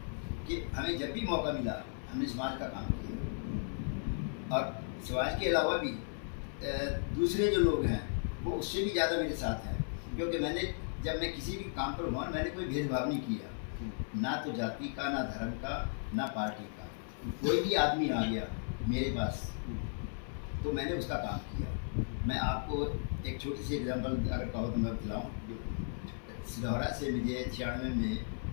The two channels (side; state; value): right; silent; 54 dB below the other